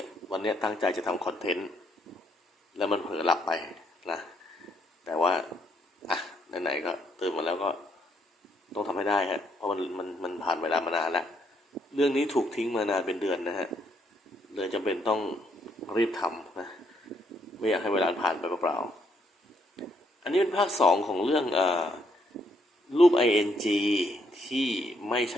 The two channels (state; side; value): normal; both; correlation 0.73